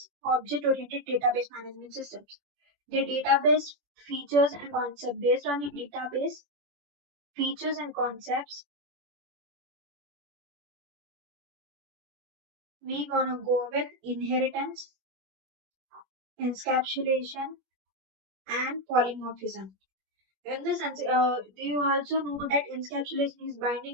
object-oriented database management systems. The database features and concepts. Based on the database features and concepts, we're gonna go with inheritance, encapsulation, and polymorphism. In this sense, you also know that encapsulation is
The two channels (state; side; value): late; left; 21 ms